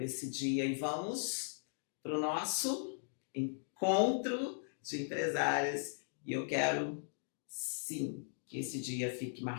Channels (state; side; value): silent; right; digital silence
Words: esse dia. E vamos para o nosso encontro de empresárias. E eu quero, sim, que esse dia fique